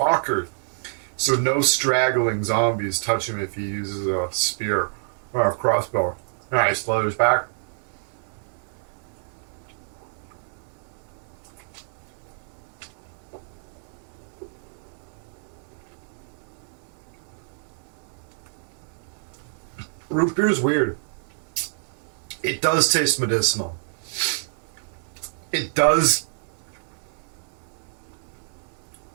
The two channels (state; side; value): silent; left; digital silence